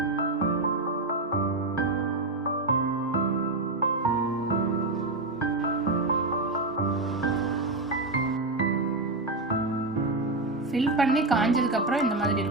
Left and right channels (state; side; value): quieter; left; 3.0 dB